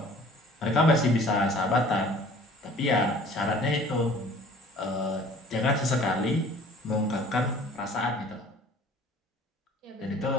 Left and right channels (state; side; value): normal; both; correlation 0.50